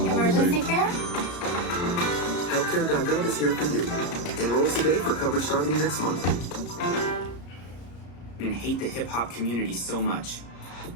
whole Emergency debate. care? Healthcare.gov is here for you. Enroll today for coverage starting next month. And hate the hip-hop community so much.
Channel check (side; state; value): right; late; 34 ms